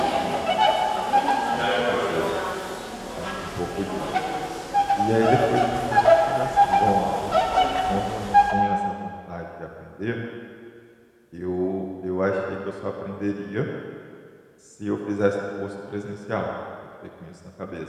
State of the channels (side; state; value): both; identical; correlation 1.00